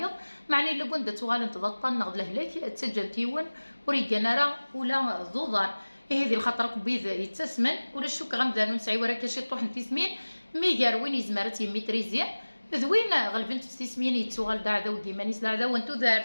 معني الا كنت تغال تضطن نغد لهلاك تسجل تيون وريكان راه ولا ضوضان هذه الخطر كبيذ يتسمن ولا الشوك غمدانو نسعي ورا كاشي طوح تسمين ميغار وين يزمرت يميتريزيا ذوين غلبنت تسمين يتسوغال داعدا وديمانيس داعدا وانتو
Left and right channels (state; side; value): inverted; both; correlation -1.00